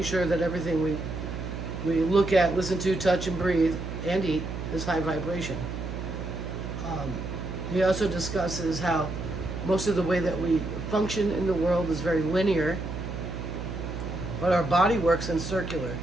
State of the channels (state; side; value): noise; right; hum, 6 dB below the sound